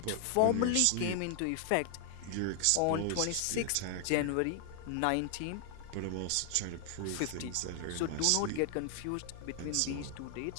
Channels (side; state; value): both; different; correlation 0.00